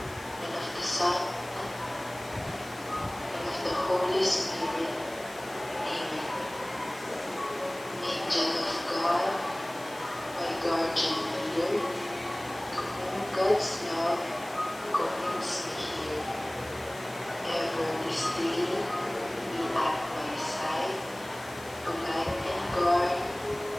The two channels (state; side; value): noise; left; hiss, 19 dB below the sound